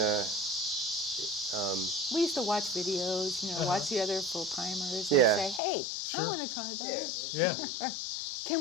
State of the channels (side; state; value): right; drops out; at 5.6 s